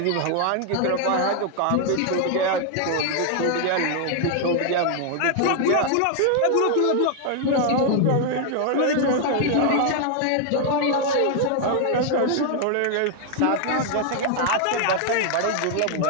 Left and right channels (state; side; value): different; both; correlation 0.00